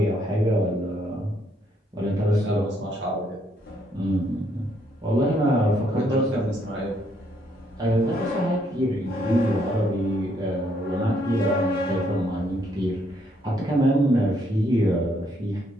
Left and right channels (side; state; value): both; normal; correlation 0.71